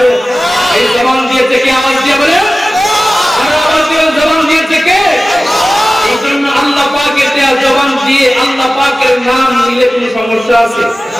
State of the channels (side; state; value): both; normal; correlation 0.96